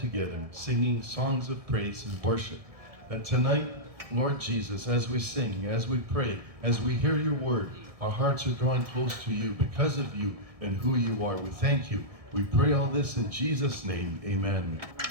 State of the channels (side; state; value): left; late; 1.6 ms